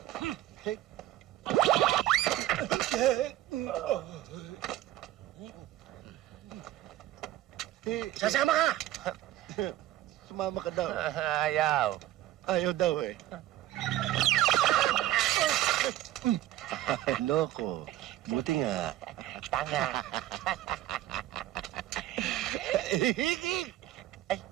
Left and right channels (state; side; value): quieter; left; 14.0 dB